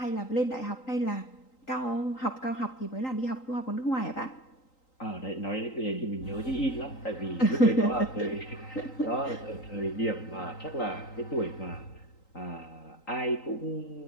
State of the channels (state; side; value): late; right; 3.9 ms